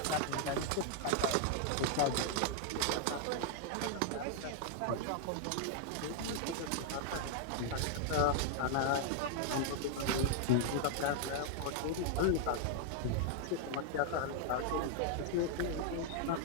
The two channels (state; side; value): different; both; correlation 0.00